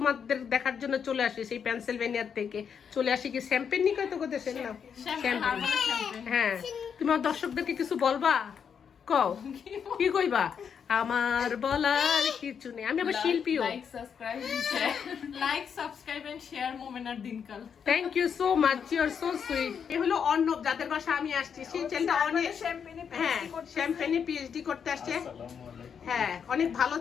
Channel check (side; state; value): right; quieter; 7.2 dB